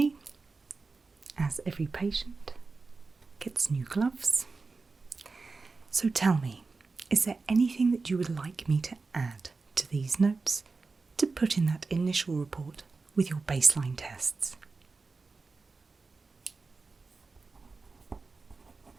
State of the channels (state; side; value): quieter; left; 4.1 dB